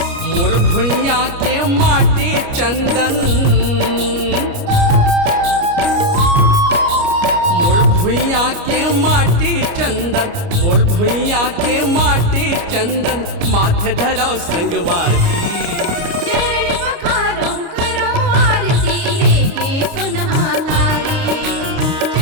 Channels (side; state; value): left; late; 29 ms